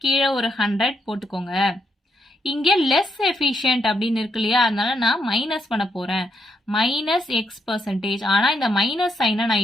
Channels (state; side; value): normal; both; correlation 0.78